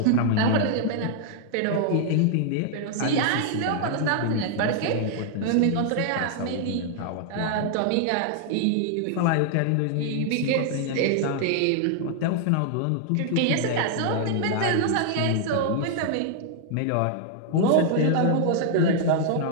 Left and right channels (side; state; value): both; different; correlation 0.00